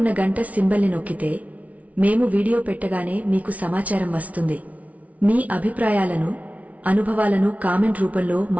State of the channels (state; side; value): late; left; 0.069 ms